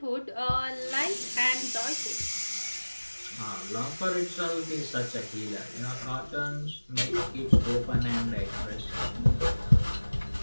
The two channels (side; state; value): both; inverted; correlation -1.00